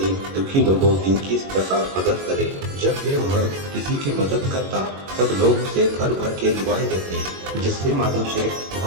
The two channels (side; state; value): left; late; 21 ms